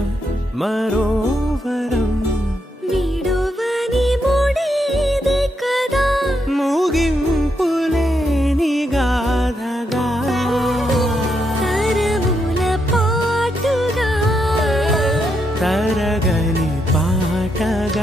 మరోవరం విడువని ముడిది కదా ముగింపులేని గాథగా తరముల పాటుగా తరగని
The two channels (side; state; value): both; normal; correlation 0.80